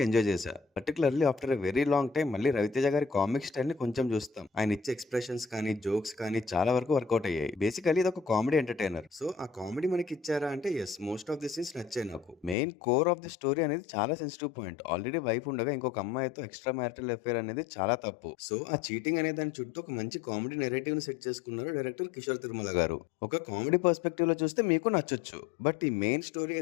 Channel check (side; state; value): right; drops out; at 12.6 s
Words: ఎంజాయ్ చేశా. Particularly after a very long time మళ్ళీ రవితేజ గారి కామిక్ స్టైల్ని కొంచెం చూస్తాం. ఆయన ఇచ్చే ఎక్స్ప్రెషన్స్ కానీ జోక్స్ కానీ చాలా వరకు వర్కౌట్ అయ్యాయి. బేసికలీ ఇది ఒక కామెడీ ఎంటర్టైనర్. సో ఆ కామెడీ మనకి ఇచ్చారా అంటే yes, most of the scenes నచ్చాయి నాకు. Main core of the story అనేది చాలా సెన్సిటివ్ పాయింట్. ఆల్రెడీ వైఫ్ ఉండగా ఇంకొక అమ్మాయితో ఎక్స్ట్రా మ్యారిటల్ అఫేర్ అనేది చాలా తప్పు. సో ఆ చీటింగ్ అనే దాని చుట్టూ ఒక మంచి కామెడీ నెరేటివ్ ని సెట్ చేసుకున్నారు డైరెక్టర్ కిషోర్ తిరుమల గారు. ఒక కామెడీ పర్స్పెక్టివ్ లో చూస్తే మీకు నచ్చొచ్చు, బట్ ఈ మెయిన్ స్టోరీ